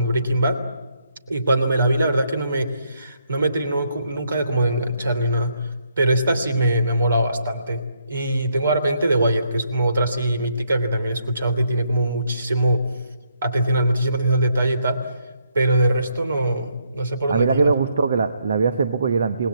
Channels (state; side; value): inverted; both; correlation -0.74